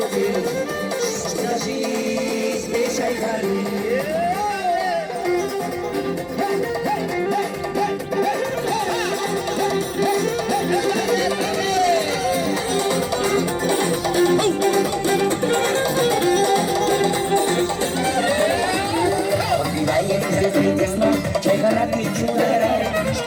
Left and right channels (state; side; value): identical; both; correlation 1.00